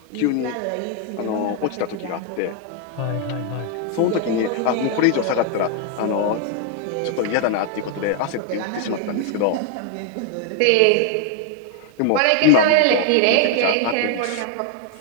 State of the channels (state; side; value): different; both; correlation 0.00